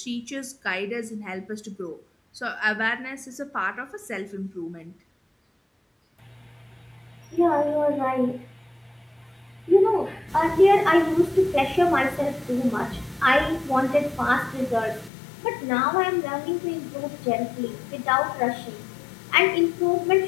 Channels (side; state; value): right; drops out; at 15.1 s